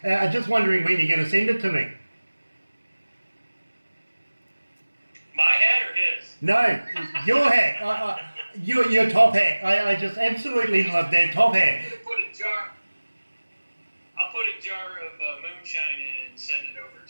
Just wondering when you're going to send it to me. My hat or his? No, your hat. Your top hat. I just absolutely love that top hat. I'll put a jar of moonshine in and send it over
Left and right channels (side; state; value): both; inverted; correlation -1.00